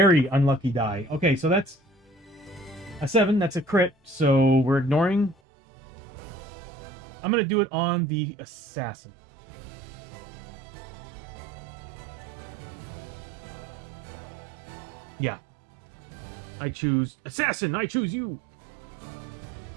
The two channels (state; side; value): drops out; left; at 5.4 s